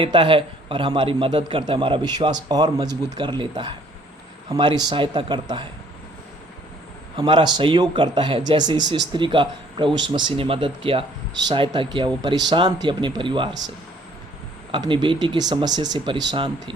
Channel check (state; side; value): normal; both; correlation 0.59